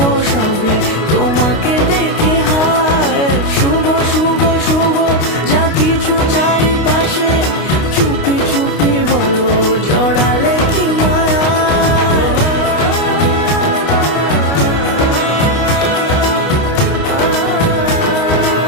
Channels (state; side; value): late; right; 29 ms